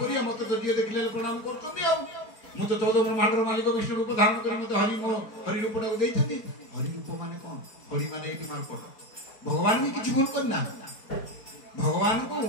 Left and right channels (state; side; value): late; right; 4.3 ms